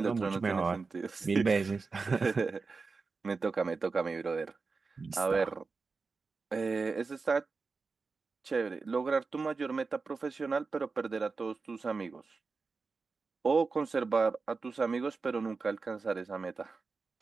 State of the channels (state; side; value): quieter; left; 4.4 dB